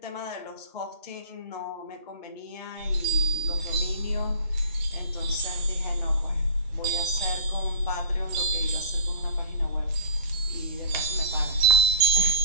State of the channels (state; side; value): inverted; both; correlation -0.35